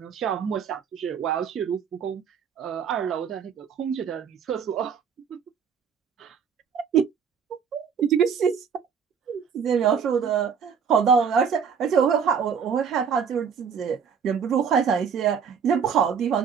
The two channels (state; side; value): quieter; left; 6.9 dB